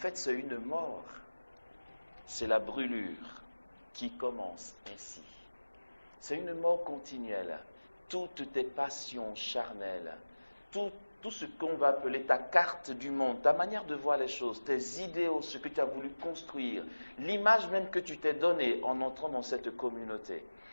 c'est une mort. C'est la brûlure qui commence ainsi. C'est une mort continuelle. Toutes tes passions charnelles, tout ce qu'on va appeler ta carte du monde, ta manière de voir les choses, tes idéaux, ce que tu as voulu construire, l'image même que tu t'es donnée en entrant dans cette communauté.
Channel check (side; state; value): both; inverted; correlation -1.00